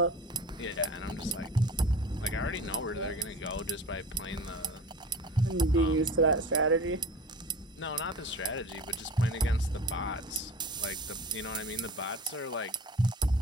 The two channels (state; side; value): normal; both; correlation 0.37